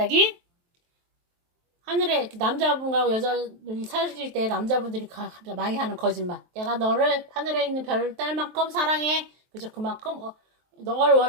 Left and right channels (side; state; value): left; late; 23 ms